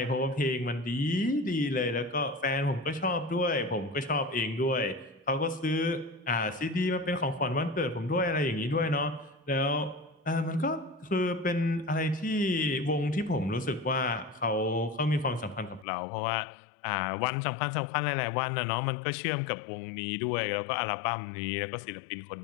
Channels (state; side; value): drops out; right; at 15.9 s